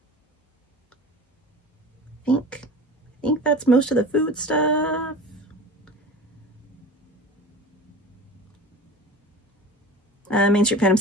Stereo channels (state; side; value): normal; both; correlation 0.36